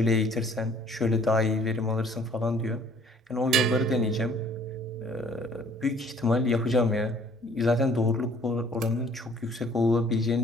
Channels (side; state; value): both; normal; correlation 0.57